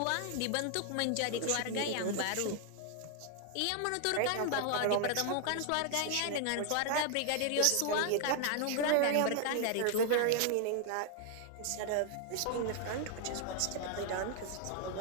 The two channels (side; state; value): both; different; correlation 0.00